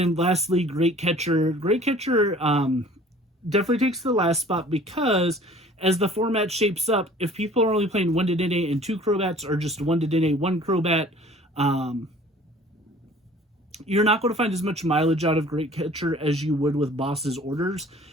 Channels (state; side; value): normal; both; correlation 0.50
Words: lastly, Great Catcher. Great Catcher definitely takes the last spot because as the format shapes up, if people are only playing 1 Dedenne and 2 Crobats or just 1 Dedenne, 1 Crobat, you're not going to find as much mileage out of Great Catcher as you would with Boss's Orders.